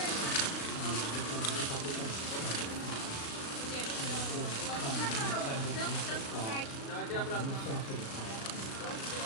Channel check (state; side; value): late; right; 36 ms